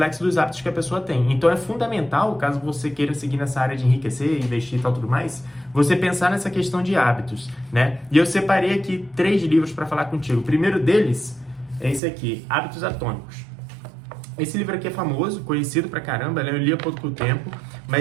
dos hábitos que a pessoa tem. Então é fundamental, caso você queira seguir nessa área de enriquecer, investir e tal, tudo mais, você pensar nessa questão de hábitos, né? E eu separei aqui 3 livros para falar contigo. O primeiro deles é esse aqui, Hábitos Atômicos. Esse livro aqui é famoso, conhecido pra caramba, né? Eu li há pouco tempo,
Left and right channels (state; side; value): drops out; left; at 12.0 s